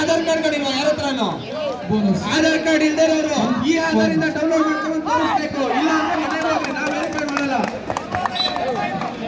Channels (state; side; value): identical; both; correlation 1.00